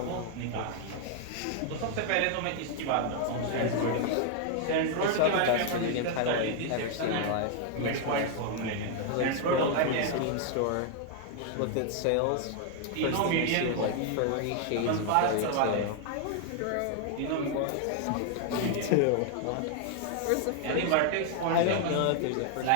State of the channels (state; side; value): different; both; correlation 0.00